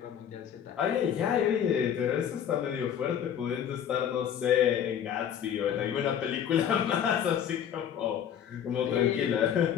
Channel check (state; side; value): quieter; right; 9.0 dB